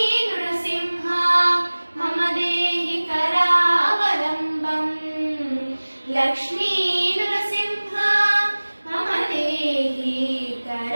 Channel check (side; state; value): both; inverted; correlation -1.00